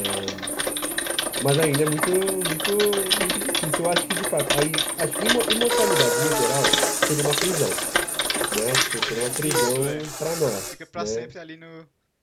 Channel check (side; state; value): both; identical; correlation 1.00